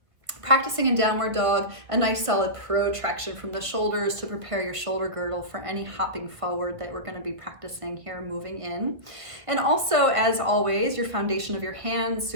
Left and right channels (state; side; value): late; left; 1.5 ms